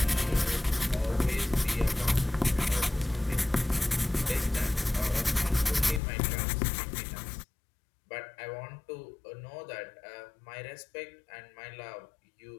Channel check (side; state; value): right; drops out; at 6.0 s